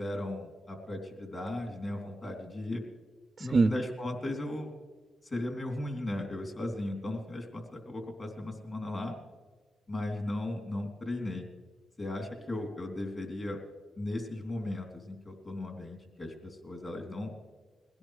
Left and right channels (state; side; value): normal; both; correlation 0.91